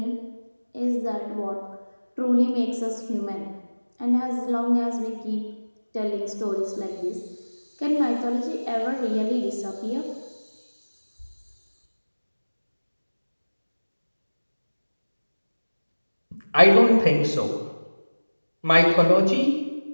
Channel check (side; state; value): both; inverted; correlation -1.00